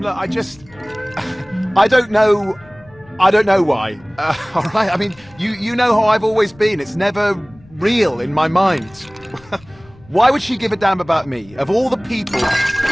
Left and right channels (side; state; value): left; noise; rumble, 26 dB below the sound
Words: I don't know... I don't know why. All right, I mean, you know how I've always been. It's never real in my mind. Why would she give a damn about me? Of all the people...